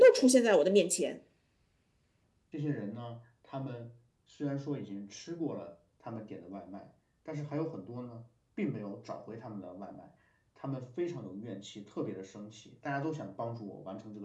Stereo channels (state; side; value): identical; both; correlation 1.00